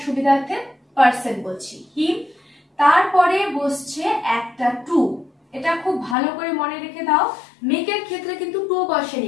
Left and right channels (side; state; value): right; drops out; at 6.2 s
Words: সুবিধার্থে পারসন বলছি, হিম। তারপরে বসছে একটা টু, এটা খুব ভালো করে মনে রেখে দাও, মেকের ক্ষেত্রে কিন্তু টু